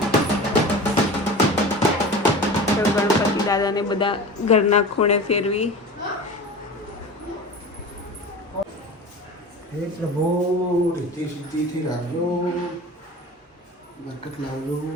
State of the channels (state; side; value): normal; both; correlation 0.34